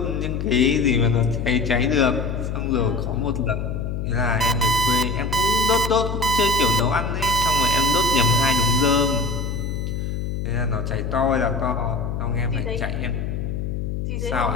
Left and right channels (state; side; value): noise; left; hum, 3 dB below the sound